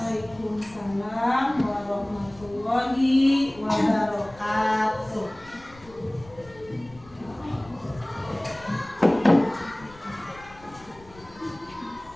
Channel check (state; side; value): noise; left; rumble, 23 dB below the sound